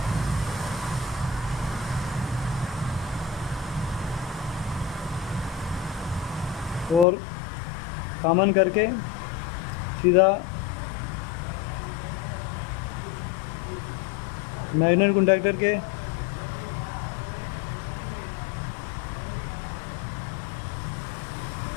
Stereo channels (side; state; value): right; drops out; at 7.1 s